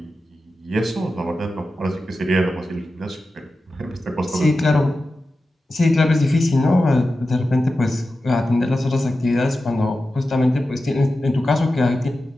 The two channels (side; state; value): both; normal; correlation 0.92